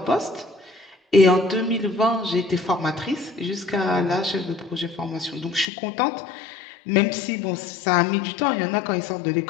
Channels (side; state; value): right; drops out; at 5.7 s